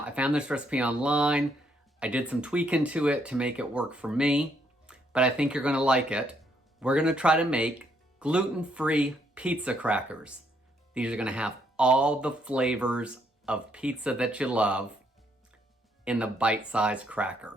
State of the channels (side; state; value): both; normal; correlation 0.73